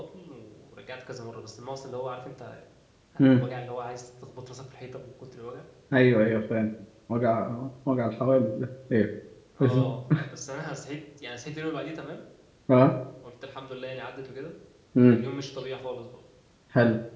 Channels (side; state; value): both; identical; correlation 1.00